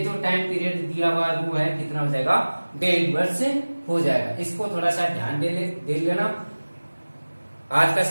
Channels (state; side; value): inverted; both; correlation -1.00